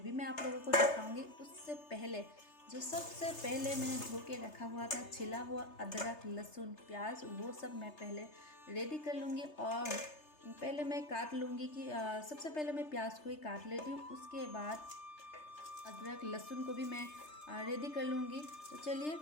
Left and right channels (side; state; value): right; late; 3.3 ms